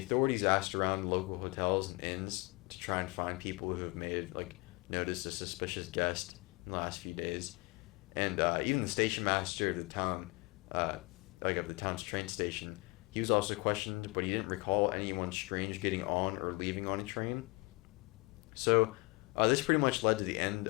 authorities asked around local hotels and inns to try and find people who have noticed a suspicious guest in the last few days, and even the station master of the town, of the town's train station, he was also questioned, but he didn't recall anyone strange getting on or leaving on a train. So this pretty much led to the end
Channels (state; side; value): quieter; right; 25.9 dB